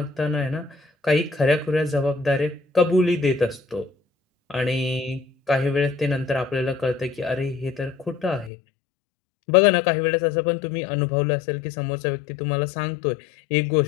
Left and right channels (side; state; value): right; drops out; at 8.5 s